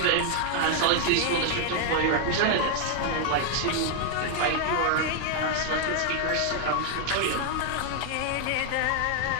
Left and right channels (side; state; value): both; different; correlation 0.00